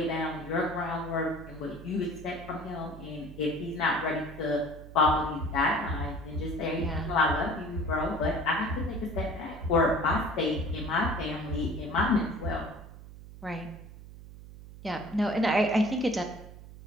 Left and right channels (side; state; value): right; noise; hum, 16 dB below the sound